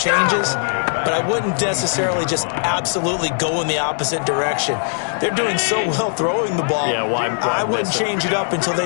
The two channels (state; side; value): silent; right; digital silence